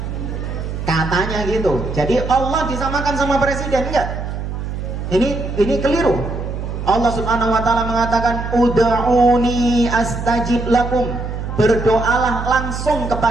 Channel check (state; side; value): noise; right; hum, 6 dB below the sound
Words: katanya gitu. Jadi Allah disamakan sama presiden? Enggak. Ini keliru. Allah Subhanahu wa ta'ala mengatakan ud'uni astajib lakum, berdoalah langsung